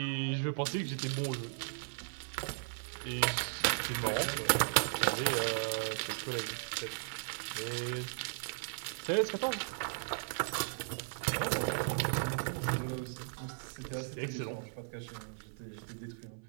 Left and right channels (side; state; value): left; silent; 53 dB below the other